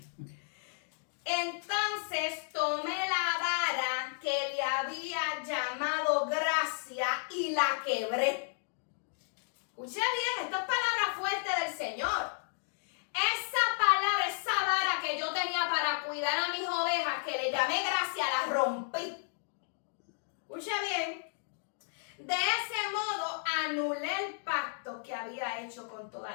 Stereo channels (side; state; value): right; silent; digital silence